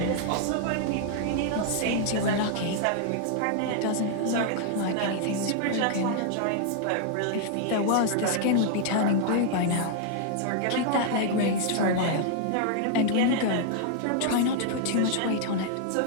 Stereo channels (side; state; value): both; different; correlation 0.00